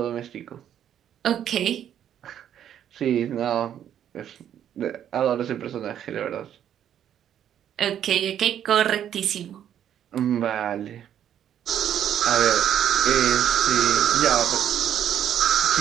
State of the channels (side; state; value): left; quieter; 10.0 dB